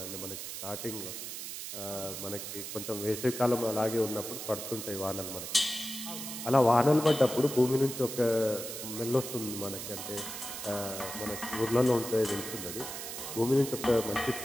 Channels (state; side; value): noise; right; hiss, 7 dB below the sound